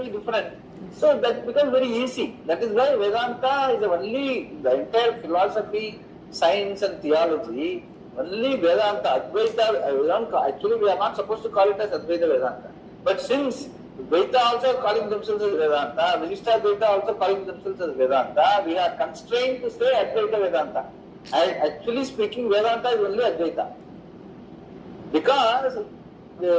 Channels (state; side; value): identical; both; correlation 1.00